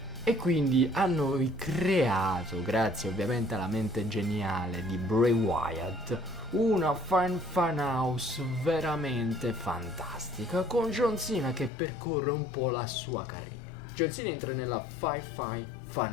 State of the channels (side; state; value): right; drops out; at 11.7 s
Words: E quindi hanno creato, grazie ovviamente alla mente geniale di Bray Wyatt, una fan house veramente fantastica, con John Cena che percorre un po' la sua carriera. John Cena entra nella Firefly